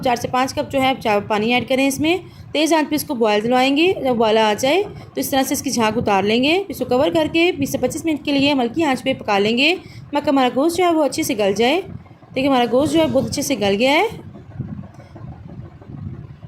4 से 5 कप जो है चावल पानी ऐड करें। इसमें तेज़ आंच पे इसको बॉयल दिलवाएंगे। जब बॉयल आ जाए तो इस तरह से इसकी झाग उतार लेंगे। इसको कवर करके 20 से 25 मिनट के लिए हल्की आंच पे पका लेंगे। मगर हमारा गोश्त जो है वो अच्छे से गल जाए। देखिए हमारा गोश्त जो है बहुत अच्छे से गल गया है।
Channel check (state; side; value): identical; both; correlation 1.00